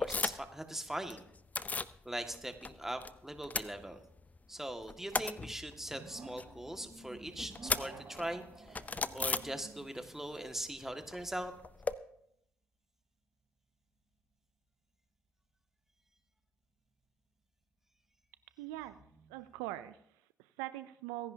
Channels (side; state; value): both; normal; correlation 0.53